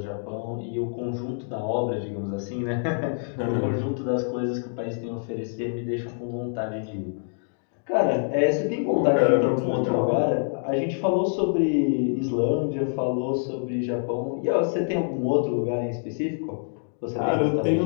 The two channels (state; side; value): silent; right; digital silence